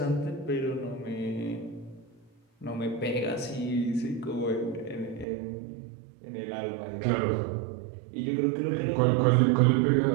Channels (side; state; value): left; drops out; at 5.2 s